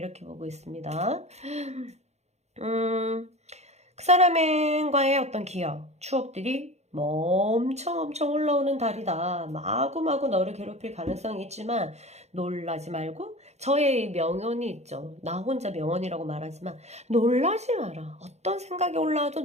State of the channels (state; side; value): late; left; 0.32 ms